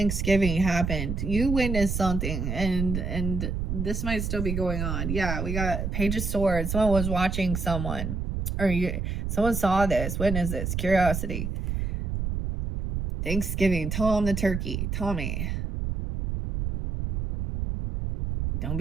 happened. You witnessed something, and this might still be going on. Yeah, we got Page of Swords. Someone was watching someone, or someone saw this, witnessed this, curiosity. Thanksgiving, Tom the turkey. Tommy, don't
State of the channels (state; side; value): noise; right; rumble, 2 dB below the sound